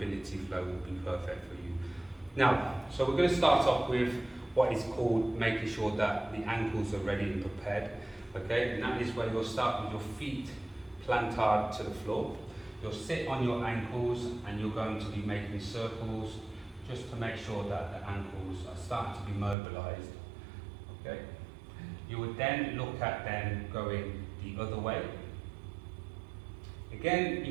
flow will be perfect for you. Now, so we're going to start off with what is called making sure that the ankles are ready and prepared. Okay, and that is where you'll start with your feet planted to the floor. You'll sit on your ankles and you're going to be making circles just to make sure that the ankles are starting to be mobilized. Okay. You would then look at them going the other way. Again,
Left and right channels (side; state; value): left; drops out; at 19.6 s